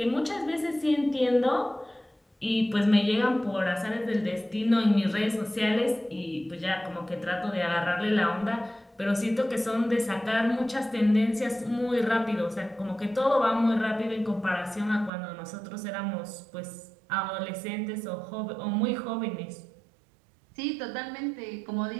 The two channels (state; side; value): drops out; left; at 15.1 s